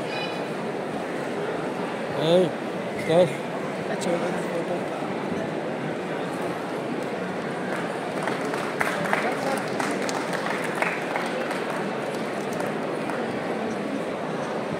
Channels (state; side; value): identical; both; correlation 1.00